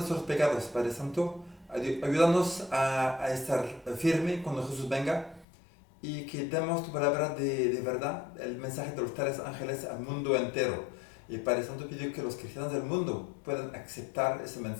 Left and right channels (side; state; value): right; drops out; at 5.5 s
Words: pecados, Padre Santo. Ayúdanos a estar firme cuando Jesús venga y que demos tu palabra de verdad, el mensaje de los 3 ángeles al mundo entero. Y Padre Santo, pido que los cristianos del mundo puedan aceptar ese